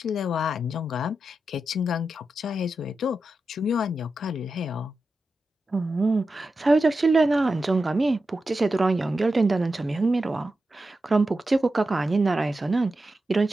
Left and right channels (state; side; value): normal; both; correlation 0.90